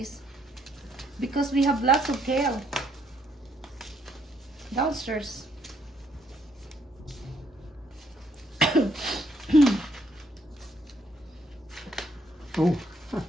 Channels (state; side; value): normal; both; correlation 0.70